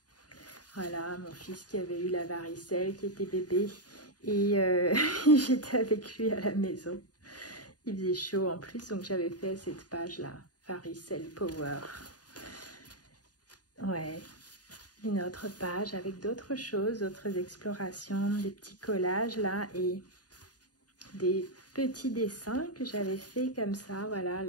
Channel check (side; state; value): right; late; 0.68 ms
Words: Voilà, mon fils qui avait eu la varicelle, qui était bébé. Et j'étais avec lui à la maison. Il faisait chaud en plus, donc j'avais fait cette page-là, Varicelle Power. Ouais. Une autre page avec d'autres choses, d'autres explorations, des petits collages là et des petits dessins que j'avais fait comme ça. Voilà,